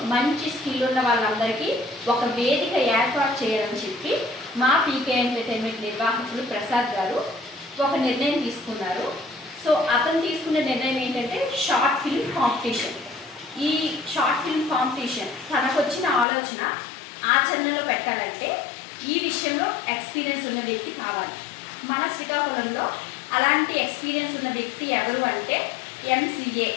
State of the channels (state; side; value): drops out; right; at 16.2 s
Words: మంచి స్కిల్ ఉన్న వాళ్ళందరికీ ఒక వేదిక ఏర్పాటు చేయాలని చెప్పి మా పీకే ఎంటర్టైన్మెంట్ నిర్వాహకులు ప్రసాద్ గారు ఒక నిర్ణయం తీసుకున్నారు. సో అతను తీసుకున్న నిర్ణయం ఏంటంటే షార్ట్ ఫిల్మ్ కాంపిటీషన్. ఈ షార్ట్ ఫిల్మ్ కాంపిటీషన్ తనకు వచ్చిన ఆలోచన ఆచరణలో పెట్టాలంటే ఈ విషయంలో ఎక్స్పీరియన్స్ ఉన్న వ్యక్తి కావాలి. మన శ్రీకాకుళంలో అలాంటి ఎక్స్పీరియన్స్ ఉన్న వ్యక్తి ఎవరు అంటే MCA